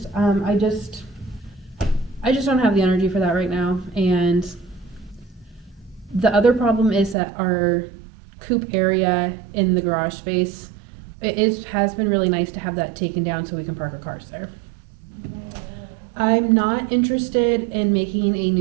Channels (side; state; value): left; drops out; at 7.2 s